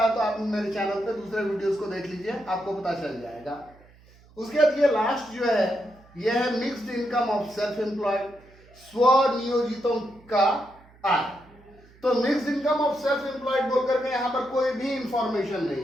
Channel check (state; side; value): noise; right; hum, 26 dB below the sound